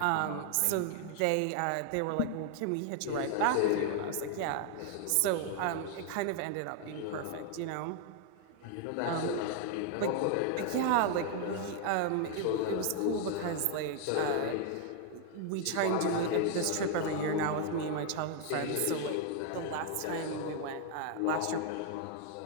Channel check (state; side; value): different; both; correlation 0.00